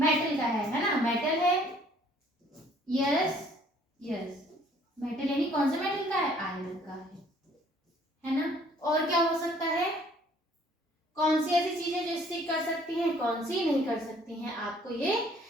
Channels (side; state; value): both; normal; correlation 0.59